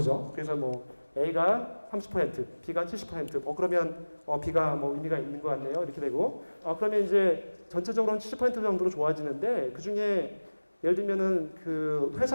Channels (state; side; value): inverted; both; correlation -1.00